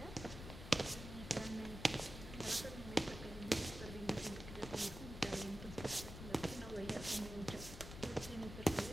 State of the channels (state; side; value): noise; left; rumble, 10 dB below the sound